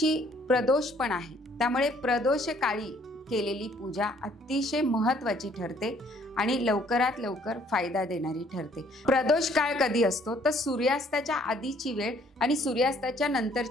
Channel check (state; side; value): normal; both; correlation 0.62